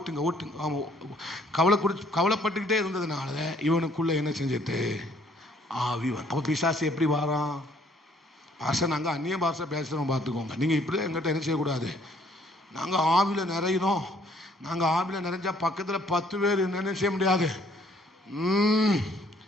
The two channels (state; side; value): normal; both; correlation 0.63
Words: கவலைப்பட்டுக்கிட்டே இருந்ததுனால இவனுக்குள்ள என்ன செஞ்சிட்டு ஆவி. அப்ப பிசாசு எப்படி வாரான்? பாஷை நாங்க அந்நிய பாஷை பேசுறோம், பார்த்துக்கோங்க. நீங்க இப்படி எங்கிட்ட என்ன செய்யக்கூடாது. நாங்க ஆவில நிறையிறோம், நாங்கள் ஆவியில் நிறைஞ்சா பக்கத்தில் 10 பேர் என்ன செய்ய முடியாது,